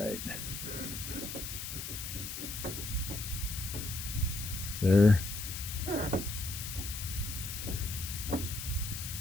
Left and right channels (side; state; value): left; noise; hiss, 6 dB below the sound